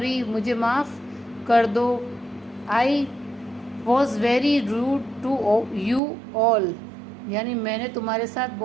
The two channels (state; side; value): drops out; left; at 6.0 s